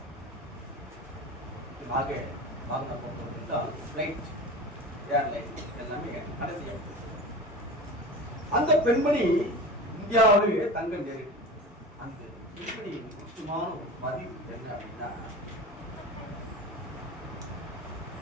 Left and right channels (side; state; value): both; normal; correlation 0.32